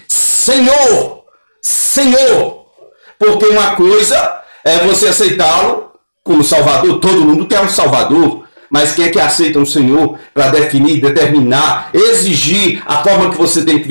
Senhor! Porque uma coisa é você aceitá-lo como Salvador. Todo mundo quer um Salvador. Mas quem é que aceita um Senhor para definir, determinar, exigir a forma que você tem que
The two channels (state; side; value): inverted; both; correlation -1.00